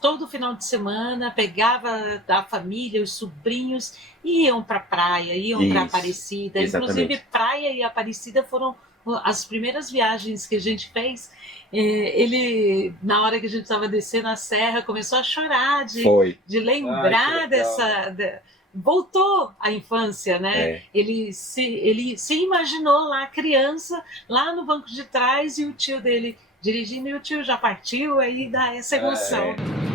final de semana pegava a família, os sobrinhos, e iam para praia, iam para Aparecida. Exatamente. Inclusive, praia e Aparecida foram as primeiras viagens que a gente fez. Ele, na hora que a gente estava descendo a serra, começou a chorar de lembrar voltou à infância, né? Ele se imaginou lá criança, lá no banco de trás, e o tio dele dirigindo, e o tio já partiu, aí dá essa emoção.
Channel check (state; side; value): normal; both; correlation 0.40